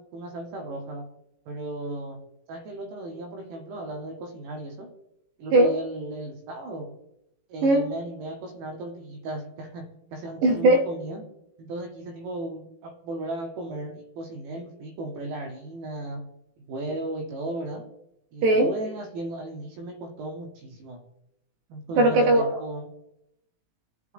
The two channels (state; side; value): late; left; 18 ms